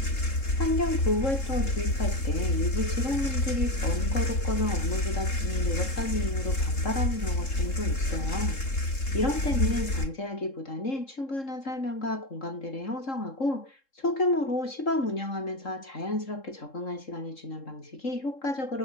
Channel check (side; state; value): right; late; 3.7 ms